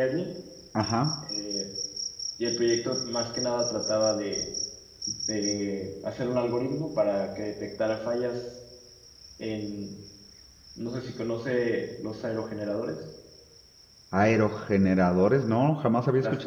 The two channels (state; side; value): identical; both; correlation 1.00